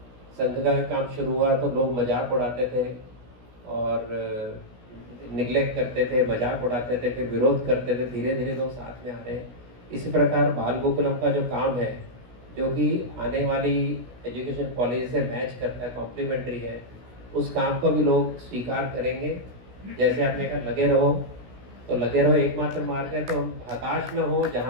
संघ का काम शुरू हुआ तो लोग मजाक उड़ाते थे और निगलेक्ट करते थे, मजाक उड़ाते थे, फिर विरोध करते थे, धीरे धीरे लोग साथ में आ रहे हैं। इसी प्रकार बाल गोकुलम का जो काम है, जो कि आने वाली एजुकेशन पॉलिसी से मैच करता है, कॉम्प्लीमेंट्री है, उस काम को भी लोग स्वीकार करेंगे। जैसे आपने कहा लगे रहो, तो लगे रहो एकमात्र मार्ग है, तो हम हताश न हो।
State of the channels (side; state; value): left; late; 16 ms